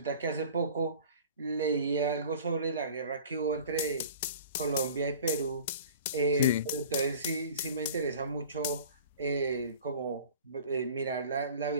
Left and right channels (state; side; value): inverted; both; correlation -0.42